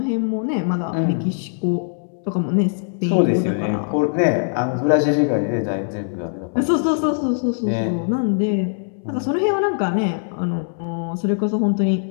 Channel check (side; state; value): right; silent; 65 dB below the other